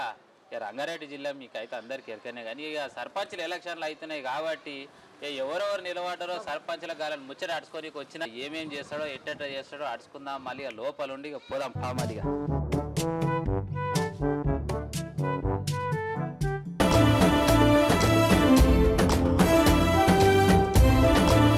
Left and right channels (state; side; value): identical; both; correlation 1.00